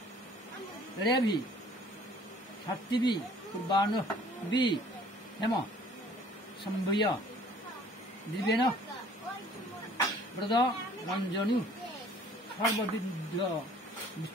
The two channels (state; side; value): normal; both; correlation 0.54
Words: heavy সাত্তিবি পূর্বাণ B হেম সম্ভয় দিবেন ব্রত রঞ্জনী সর্ববিদ্ধ